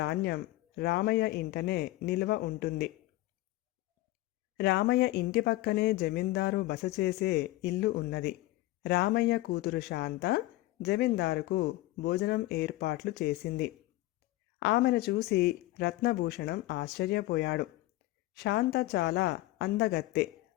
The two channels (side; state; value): right; quieter; 17.7 dB